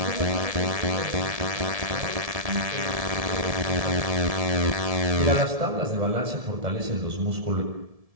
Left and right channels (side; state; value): left; late; 1.7 ms